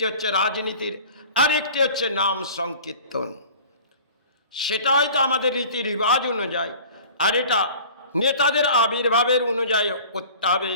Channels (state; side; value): inverted; both; correlation -0.44